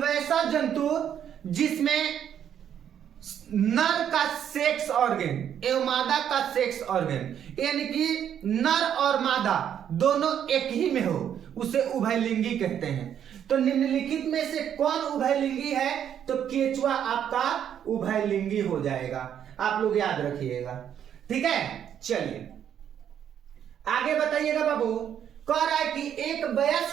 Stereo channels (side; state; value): left; quieter; 9.3 dB